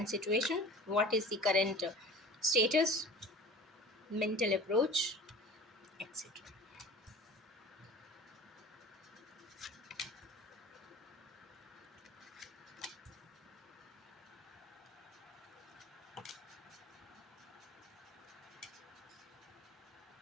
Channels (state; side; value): normal; both; correlation 0.41